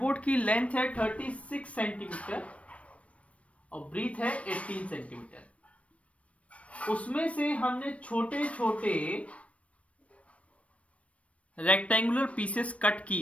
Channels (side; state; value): right; late; 0.064 ms